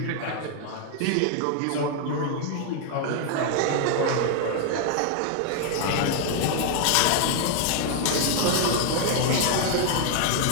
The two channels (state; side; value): different; both; correlation 0.00